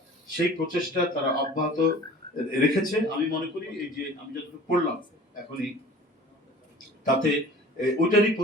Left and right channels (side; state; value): both; normal; correlation 0.44